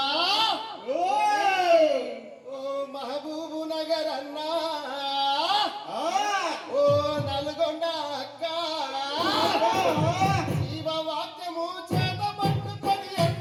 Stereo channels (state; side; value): identical; both; correlation 1.00